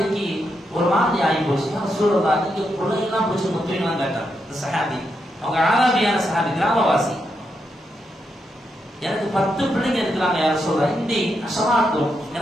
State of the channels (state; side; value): normal; both; correlation 0.83